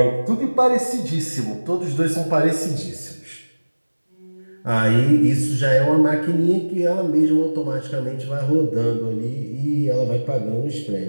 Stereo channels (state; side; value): inverted; both; correlation -1.00